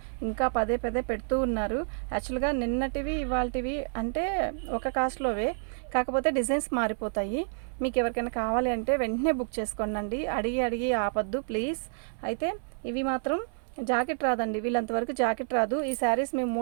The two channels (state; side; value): silent; left; 58 dB below the other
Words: ఇంకా పదే పెడుతూ ఉన్నారు. యాక్చువల్గా నిన్నటివి ఇవాళటివి అంటే ఒక కాస్ట్లోవే, కాకపోతే డిజైన్స్ మారిపోతాయి. మీకు ఎవరికైనా కావాలి అంటే వెంటనే బుక్ చేసుకోండి. అడిగి ఆపద్దు ప్లీజ్. అయితే ఇవి మాత్రం జాకెట్ రాదండి, వీళ్ళంతవరకు జాకెట్ రాదు. ఈ శారీస్ మేము